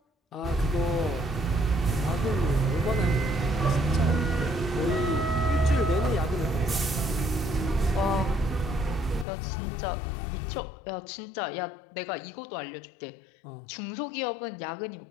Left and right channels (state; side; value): drops out; right; at 9.2 s